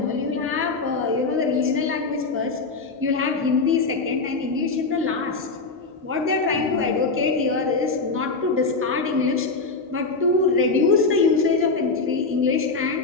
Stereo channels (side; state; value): right; quieter; 4.0 dB